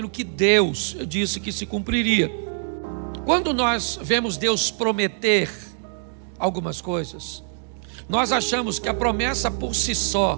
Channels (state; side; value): silent; left; digital silence